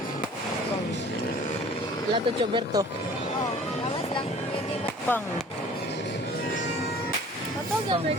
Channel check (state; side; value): normal; both; correlation 0.48